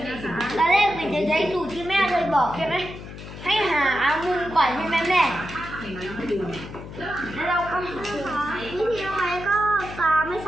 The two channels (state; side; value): noise; left; hum, 12 dB below the sound